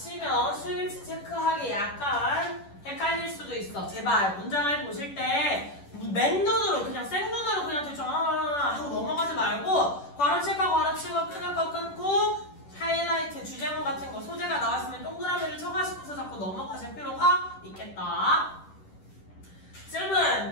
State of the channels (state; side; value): late; right; 10 ms